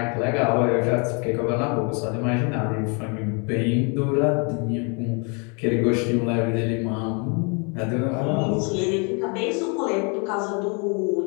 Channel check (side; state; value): right; quieter; 34.6 dB